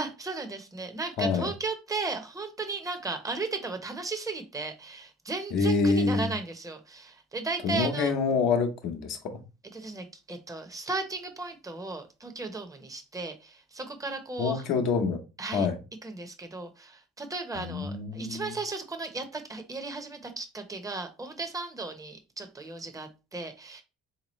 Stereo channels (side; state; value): both; normal; correlation 0.45